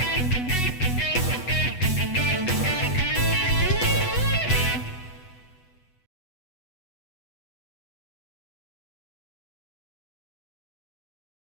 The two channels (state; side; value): late; right; 8.1 ms